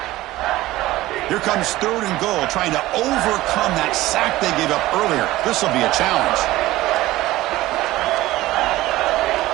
Here comes third and goal, trying to overcome that sack they gave up earlier. This will be a challenge.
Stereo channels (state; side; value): quieter; left; 17.1 dB